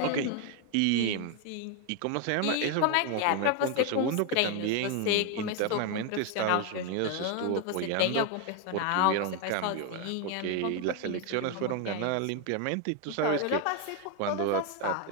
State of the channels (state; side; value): different; both; correlation 0.01